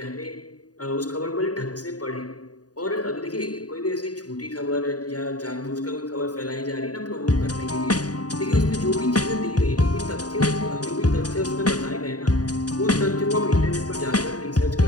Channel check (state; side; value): late; right; 0.68 ms